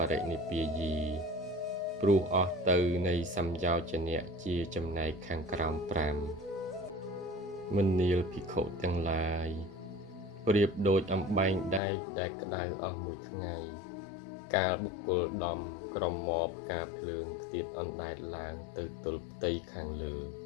រិនិព្វាយី ព្រោះអស់ទៅនៃសំយោជនៈជាចំណែកខាងក្រោម5មនាលភិក្ខុទាំងឡាយប្រៀបដូចអំបែងដែកដែលក្តៅអស់មួយថ្ងៃកាលបុគ្គលដំក្រមមកផ្កាភ្លើងខ្ទាតអណ្ដែតឡើងទៅទល់ផ្ទៃខាងលើ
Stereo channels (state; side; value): drops out; right; at 11.8 s